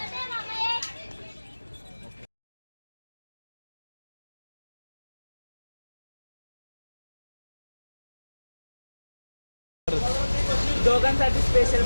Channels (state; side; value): inverted; both; correlation -1.00